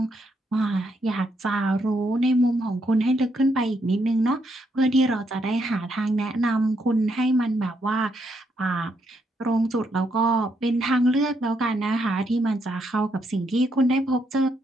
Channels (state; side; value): normal; both; correlation 0.76